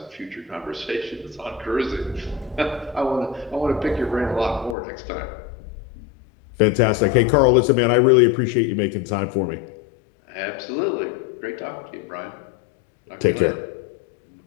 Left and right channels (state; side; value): drops out; right; at 4.8 s